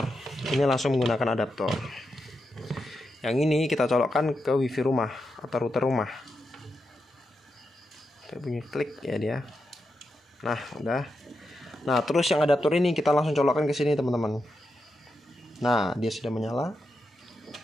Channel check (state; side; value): normal; both; correlation 0.86